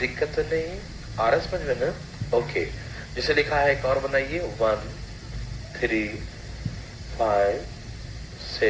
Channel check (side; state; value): both; identical; correlation 1.00